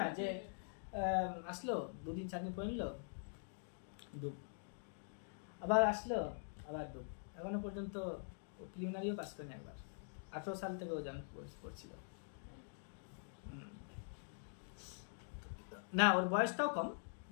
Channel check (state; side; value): silent; right; digital silence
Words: যে আসলো 2-4 দিন পরে নিল, ডুব, আবার আসলো, আবার ডুব। এখনো পর্যন্ত প্রিলিমিনারিও পাস করেনি একবার। 18 সাল থেকে ও পড়ছিল। না, ওর বয়সটাও কম,